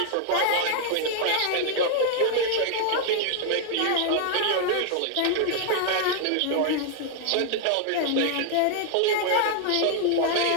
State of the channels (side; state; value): both; different; correlation 0.00